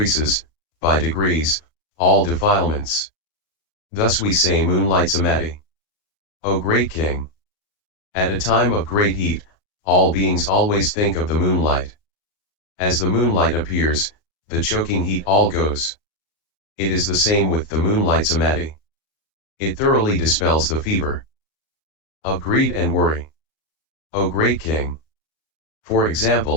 by degrees, all defilements. Thus we say moonlight samadhi. O great king! At a time of great heat, all beings always think of the moonlight. As the moonlight appears, the choking heat all goes. It is the same with the moonlight samadhi. It thoroughly dispels the fever of greed and worry. O great king! For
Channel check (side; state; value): right; late; 39 ms